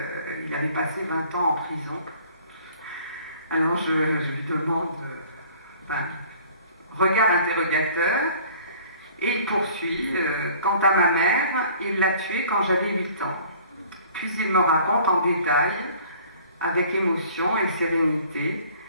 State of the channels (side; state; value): both; inverted; correlation -0.51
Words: il avait passé 20 ans en prison. Alors je lui demande, regard interrogateur, et il poursuit, quant à ma mère, il l'a tuée quand j'avais 8 ans. Puis il me raconte en détail, avec émotion et sérénité.